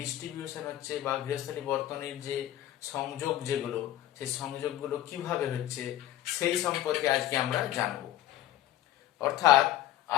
হচ্ছে বা গৃহস্থালী বর্তনীর যে সংযোগ যেগুলো, সেই সংযোগগুলো কিভাবে হচ্ছে, সেই সম্পর্কে আজকে আমরা জানব। অর্থাৎ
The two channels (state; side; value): quieter; right; 13.4 dB